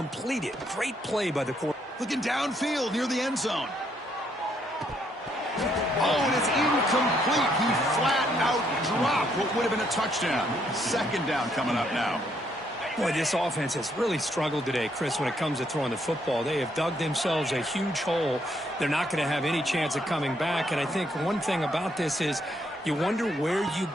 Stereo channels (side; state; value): both; normal; correlation 0.72